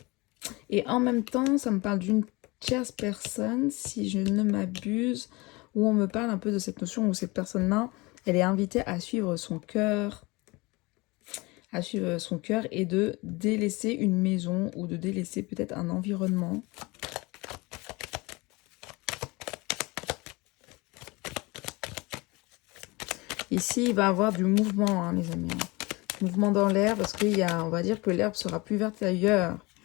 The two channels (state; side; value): quieter; right; 24.3 dB